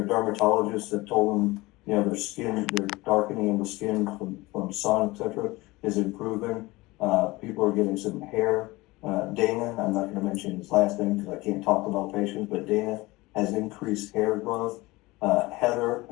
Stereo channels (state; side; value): quieter; right; 21.2 dB